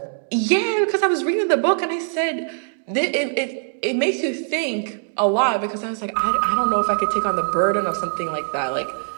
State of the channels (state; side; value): silent; left; digital silence